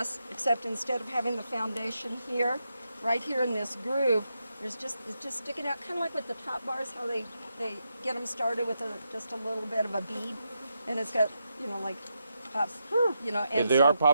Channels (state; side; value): inverted; both; correlation -0.84